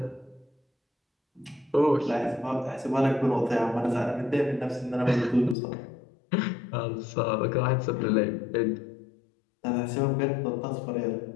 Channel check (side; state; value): right; drops out; at 5.6 s